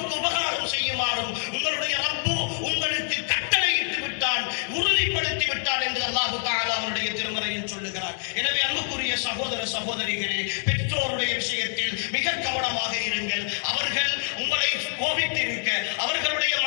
உபகாரம் செய்யுமாறும் உங்களுடைய ரப்பு உங்களுக்கு கட்டளையிட்டு விட்டான், உறுதிப்படுத்தி விட்டான் என்று அல்லாஹ் தஆலா அவருடைய திருமறையில் சொல்லுகிறார். எனவே அன்புக்குரிய சகோதர சகோதரிகளே, பெற்றோருடைய விஷயத்தில் மிக கவனமாக இருங்கள். அவர்கள் உங்களை கோபித்திருக்க, அவர்களுடைய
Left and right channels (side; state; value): right; silent; digital silence